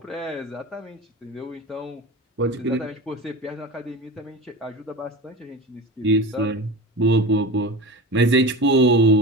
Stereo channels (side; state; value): both; normal; correlation 0.29